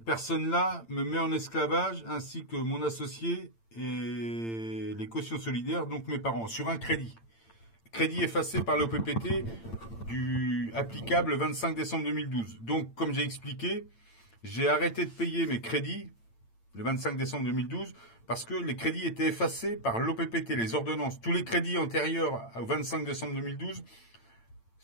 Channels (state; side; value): late; right; 8.8 ms